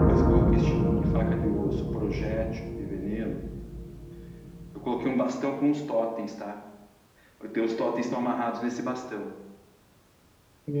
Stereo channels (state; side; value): identical; both; correlation 1.00